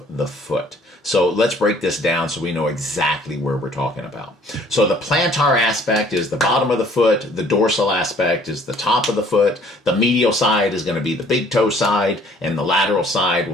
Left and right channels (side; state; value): both; normal; correlation 0.57